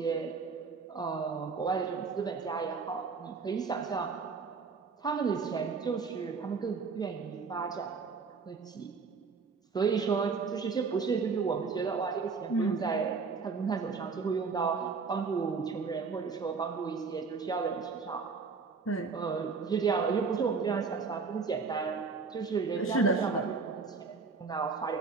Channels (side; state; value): left; quieter; 4.9 dB